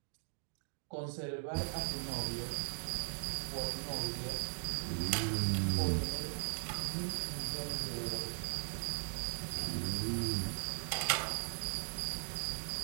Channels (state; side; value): silent; left; digital silence